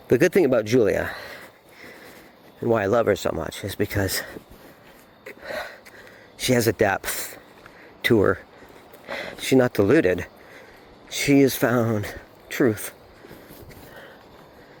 The good thing about Julia, and why I love her so much, is because she has a depth to her. She's not deluded. She has found truth.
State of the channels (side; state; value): both; identical; correlation 1.00